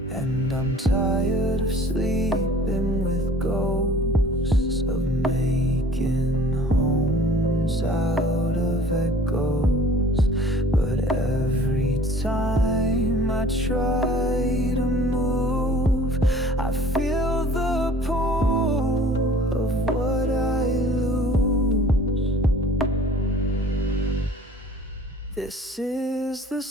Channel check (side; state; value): both; normal; correlation 0.49